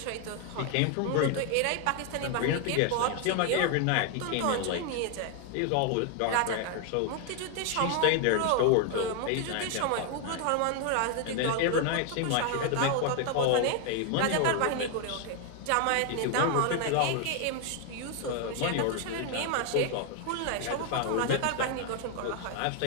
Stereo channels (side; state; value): both; different; correlation 0.00